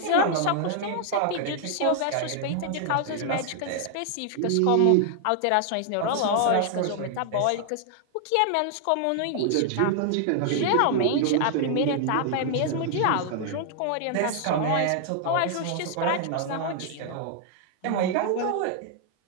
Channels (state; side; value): different; both; correlation 0.00